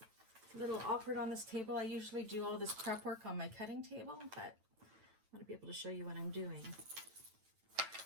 It's a little awkward on this table. I usually do all this prep work on my cutting table, but I want to be able to show you what I'm doing.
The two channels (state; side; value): late; left; 9.0 ms